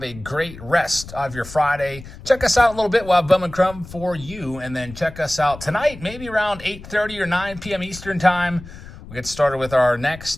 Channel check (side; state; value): left; noise; rumble, 15 dB below the sound